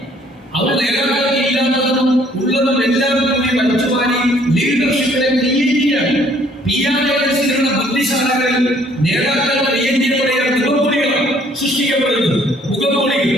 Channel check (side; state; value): both; normal; correlation 0.61